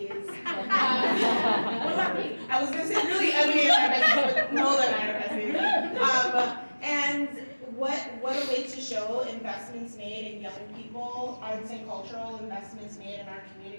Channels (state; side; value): inverted; both; correlation -1.00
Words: What about me? I was going to say really Emily and I are besties, but Nola and I are besties. And what a way to show investments made in young people, arts and cultural investments made in our